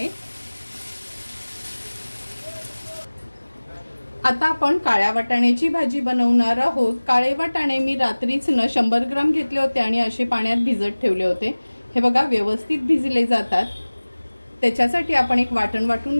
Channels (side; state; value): both; inverted; correlation -1.00